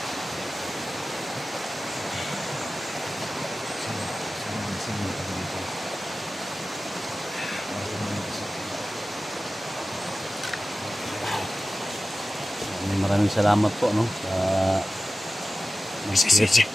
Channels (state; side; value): normal; both; correlation 0.95